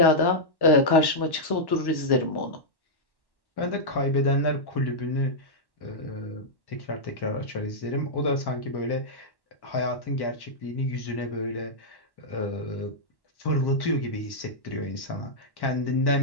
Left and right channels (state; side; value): late; right; 1.1 ms